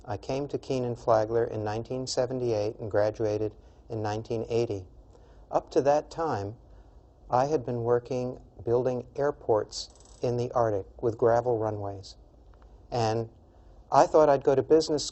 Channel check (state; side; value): identical; both; correlation 1.00